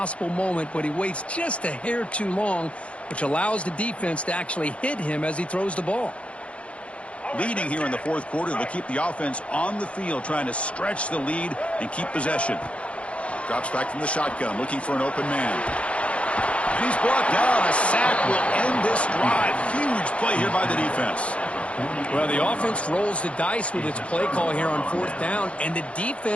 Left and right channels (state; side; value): late; right; 0.062 ms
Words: moment, but he waits just a hair too long, which allows the defense to actually hit him as he throws the ball. Leading here in the 4th quarter, they'll keep the offense on the field, trying to stretch the lead and keep possession. Drops back from the shotgun, looking for an open man. And he's brought down. A sack will end this drive. Huge play here by the defense. Well, the offense rolls the dice with its play call here on 4th down, and the